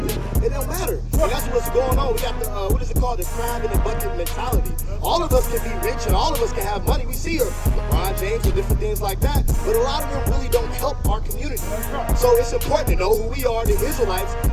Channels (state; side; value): identical; both; correlation 1.00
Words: it don't matter. And that's what's going on. We got the, what is it called? The crab in the bucket mentality. All of us can be rich and all of us can have money. We see LeBron James and different things like that, but a lot of them really don't help our community. So it's important to know who we are, the Israelites,